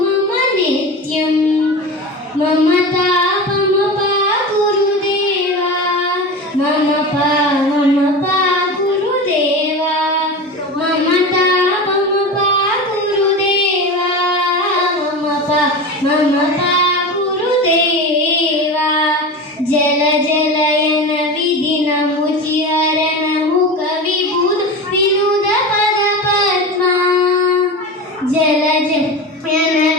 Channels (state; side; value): normal; both; correlation 0.27